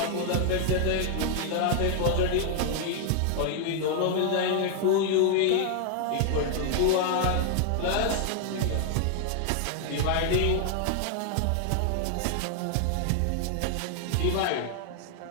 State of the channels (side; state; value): both; different; correlation 0.00